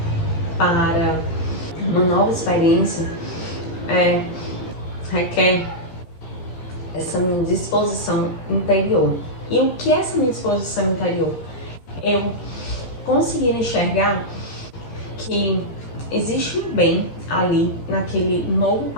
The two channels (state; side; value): late; right; 14 ms